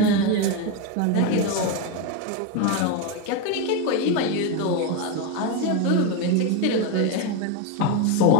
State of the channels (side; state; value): both; different; correlation 0.03